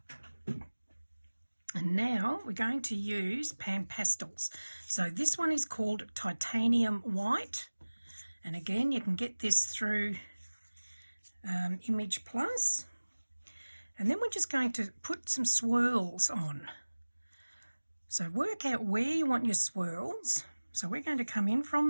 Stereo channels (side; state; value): both; inverted; correlation -1.00